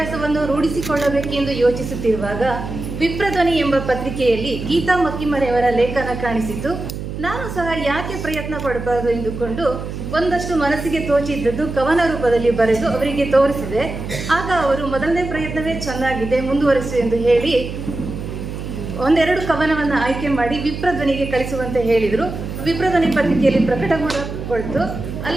ರೂಢಿಸಿಕೊಳ್ಳಬೇಕೆಂದು ಯೋಚಿಸುತ್ತಿರುವಾಗ ವಿಪ್ರಧ್ವನಿ ಎಂಬ ಪತ್ರಿಕೆಯಲ್ಲಿ ಗೀತಾ ಮಕ್ಕಿಮರೆಯವರ ಲೇಖನ ಕಾಣಿಸಿತು. ನಾನು ಸಹ ಯಾಕೆ ಪ್ರಯತ್ನ ಪಡಬಾರದು ಎಂದುಕೊಂಡು ಒಂದಷ್ಟು ಮನಸ್ಸಿಗೆ ತೋಚಿದ್ದದ್ದು ಕವನ ರೂಪದಲ್ಲಿ ಬರೆದು ಅವರಿಗೆ ತೋರಿಸಿದೆ. ಆಗ ಅವರು ಮೊದಲನೇ ಪ್ರಯತ್ನವೇ ಚೆನ್ನಾಗಿದೆ, ಮುಂದುವರಿಸು ಎಂದು ಹೇಳಿ ಒಂದೆರಡು ಕವನವನ್ನು ಆಯ್ಕೆ ಮಾಡಿ ವಿಪ್ರಧ್ವನಿಗೆ ಕಳಿಸುವಂತೆ ಹೇಳಿದರು. ವಿಪ್ರಧ್ವನಿ ಪತ್ರಿಕೆಯಲ್ಲಿ ಪ್ರಕಟಗೊಳ್ತು.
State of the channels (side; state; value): right; noise; hum, 7 dB below the sound